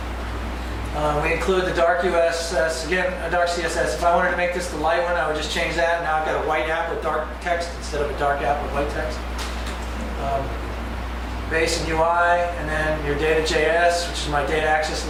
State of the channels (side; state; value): both; identical; correlation 1.00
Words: We include the dark USS, again, a dark CSS. If I wanted to make this the light one, I would just change that. Now I've got a white app with dark text instead of a dark app with white text. Base and UI, and then your data.js, which is my data access